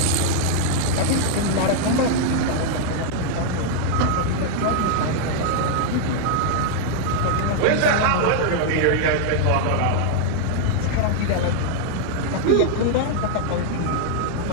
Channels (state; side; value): different; both; correlation 0.00